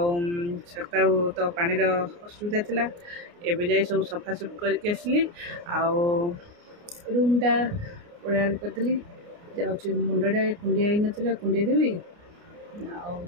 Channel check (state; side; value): late; left; 29 ms